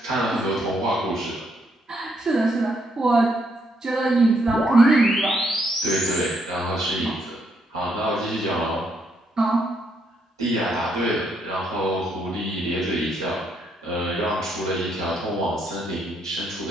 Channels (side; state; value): both; normal; correlation 0.74